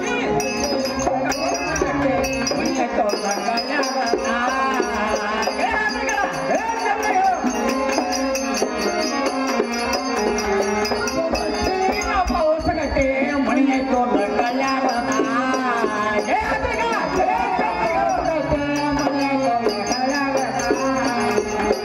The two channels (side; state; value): both; identical; correlation 1.00